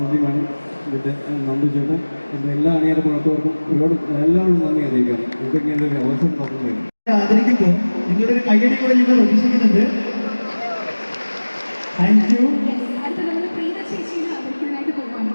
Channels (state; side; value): inverted; both; correlation -1.00